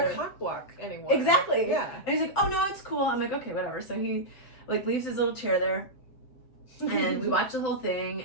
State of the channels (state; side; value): late; right; 7.8 ms